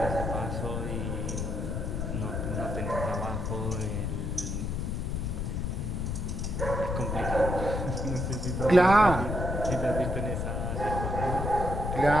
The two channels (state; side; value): noise; left; rumble, 2 dB below the sound